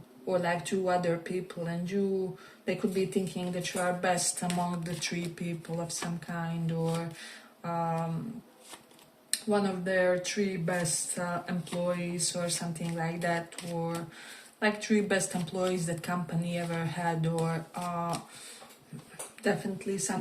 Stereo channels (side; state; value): both; identical; correlation 1.00